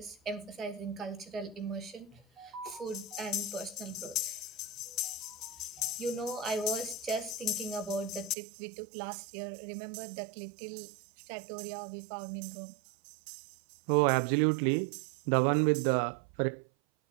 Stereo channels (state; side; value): drops out; left; at 8.3 s